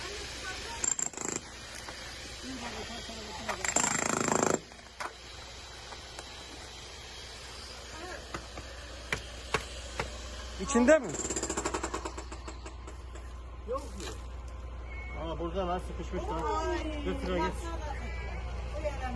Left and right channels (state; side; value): identical; both; correlation 1.00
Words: İçinde mi? Yok mu? Aa burada lan sıkışmış lan. Götür git.